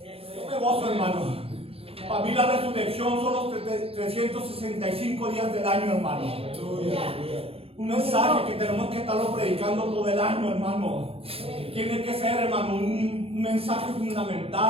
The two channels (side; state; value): left; late; 0.28 ms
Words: Yo me gozo, hermano. Para mí la resurrección son los 365 días del año, hermano. Un mensaje que tenemos que estarlo predicando todo el año, hermano. Tiene que ser, hermano, un mensaje